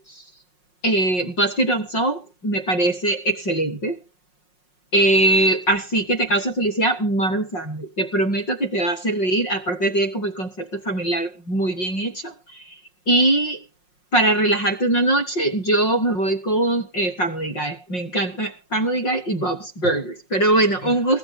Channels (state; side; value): late; right; 5.5 ms